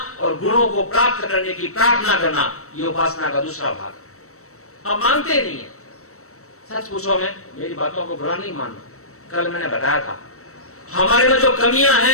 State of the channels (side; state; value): right; late; 0.64 ms